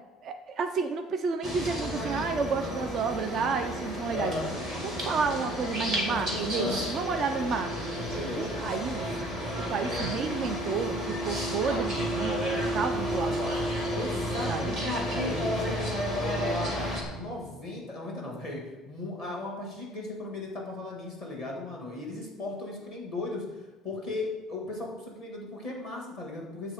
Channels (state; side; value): normal; both; correlation 0.54